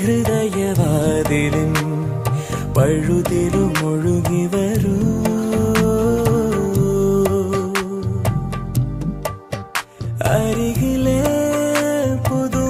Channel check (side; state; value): both; identical; correlation 1.00